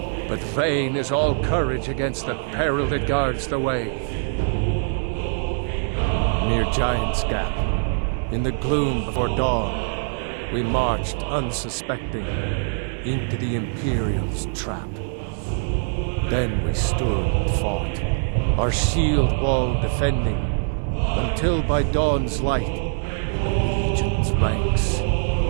but vain is all courage against the peril that guards the way. Near Giant's Gap, in the gloom before dawn, we marched unsuspecting into the Imperial's trap. Then we stood and fought, our shield wall defending, until by dawn's light, the Legion's ranks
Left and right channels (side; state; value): left; silent; digital silence